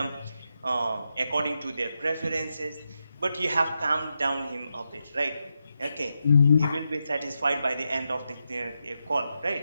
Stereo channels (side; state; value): both; inverted; correlation -0.86